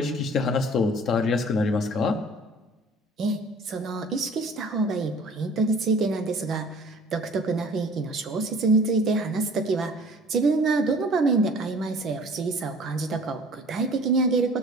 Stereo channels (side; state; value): both; normal; correlation 0.49